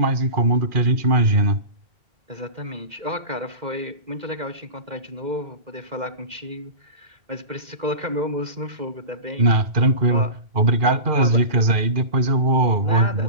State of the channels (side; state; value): left; late; 2.4 ms